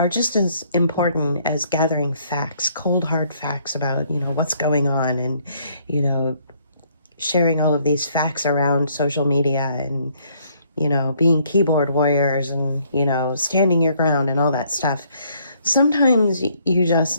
just as important as gathering facts, cold hard facts about, you know, what's going on, and, you know, sharing all of these facts around social media, and, you know, being keyboard warriors, and, you know, standing your ground and all that stuff. Sometimes you just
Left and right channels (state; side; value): inverted; both; correlation -0.66